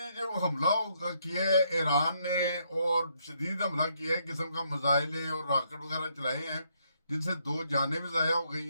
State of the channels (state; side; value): inverted; both; correlation -0.73